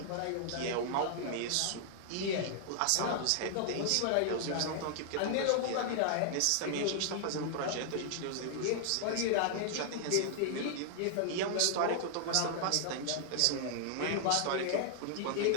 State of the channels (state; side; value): different; both; correlation -0.01